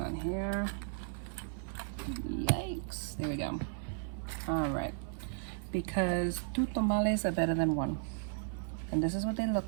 here. Yikes, there we go. All right, because two tamales are better than one. And this is what they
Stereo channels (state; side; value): silent; left; 54 dB below the other